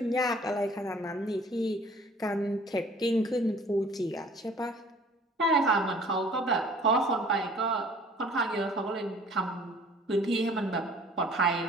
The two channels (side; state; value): both; normal; correlation 0.52